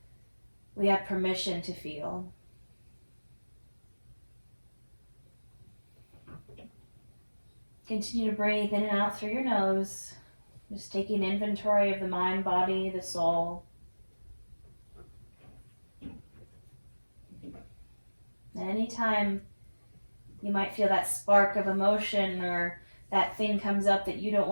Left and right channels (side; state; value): both; inverted; correlation -1.00